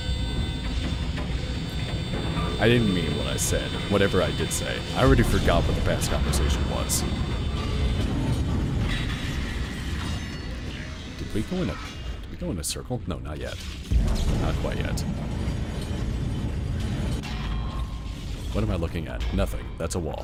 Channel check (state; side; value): identical; both; correlation 1.00